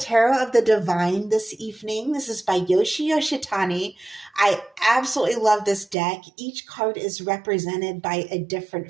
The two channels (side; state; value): left; drops out; at 6.0 s